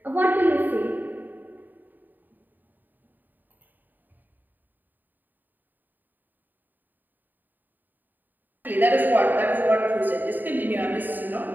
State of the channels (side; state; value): left; late; 0.089 ms